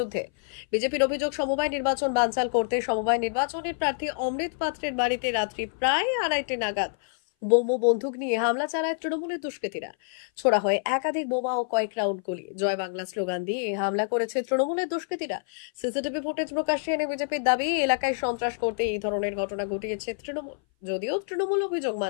বিজেপির অভিযোগ, সমবায় নির্বাচন বানচাল করতে সমবায় নির্বাচনের প্রার্থী অমৃত পাত্রের বাড়িতে রাত্রি প্রায় 2:30 নাগাদ বোম ও বন্দুক নিয়ে হামলা চালায় তৃণমূলের দুষ্কৃতীরা। ছোড়া হয় একাধিক বোমা ও কয়েক রাউন্ড গুলি। জয় বাংলা স্লোগান দিয়ে হামলা করেছে তৃণমূলের দুষ্কৃতীরা। সিসিটিভি ফুটেজ প্রকাশ্যে এনে বিজেপির দাবি, এলাকায় সন্ত্রাস করতে এই ধরনের ঘটনা ঘটিয়েছে তৃণমূল, যদিও তৃণমূল অভিযোগ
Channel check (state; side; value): silent; right; 58 dB below the other